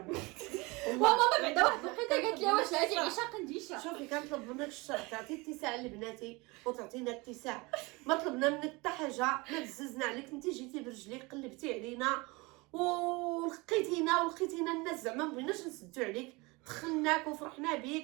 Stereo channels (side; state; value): left; quieter; 25.1 dB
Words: ماما بعدا واحد الوقيته قالت لي واش هادي عيشه قنديشه. شوفي كنطلب منك الشرع تعطي اتساع لبناتي وتعطينا اتساع. ما طلبنا منك حتى حاجه، ما بززنا عليك. انت جيتي برجليك قلبتي علينا ولقيتينا الناس زعما ما بغيناش نسدو عليك، دخلناك وفرحنا